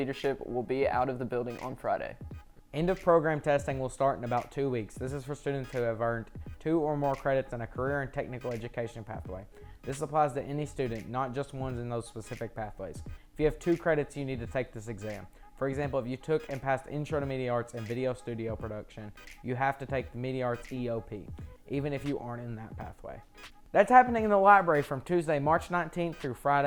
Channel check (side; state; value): both; identical; correlation 1.00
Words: will be out of the building on Friday. End of program testing will start in about 2 weeks. This is for students who have earned 2 or more credits in a career and technical education pathway. This applies to any student, not just ones in those specific pathways. If you have 2 credits, you need to take this exam. For example, if you took and passed Intro to Media Arts and Video Studio Production, you have to take the Media Arts EOP, even if you aren't in that pathway. That's happening in the library from Tuesday, March 19th through